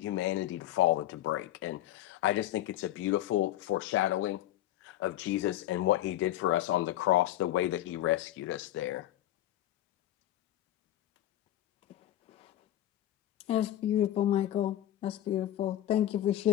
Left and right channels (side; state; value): right; quieter; 13.4 dB